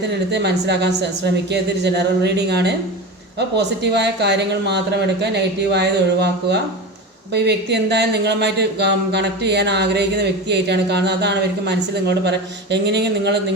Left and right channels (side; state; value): both; normal; correlation 0.26